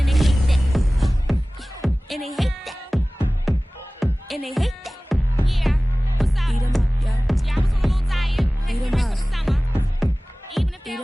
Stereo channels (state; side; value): normal; both; correlation 0.98